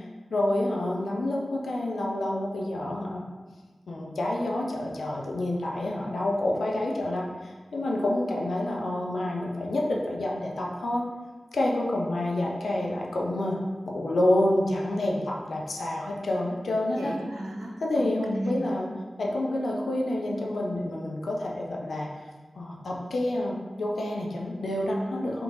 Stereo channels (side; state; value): both; normal; correlation 0.94